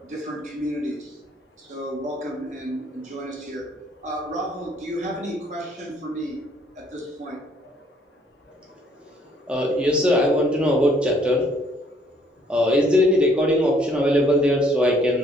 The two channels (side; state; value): both; normal; correlation 0.63